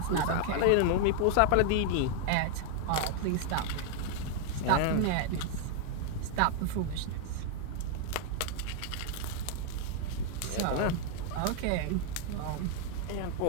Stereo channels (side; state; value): both; different; correlation 0.00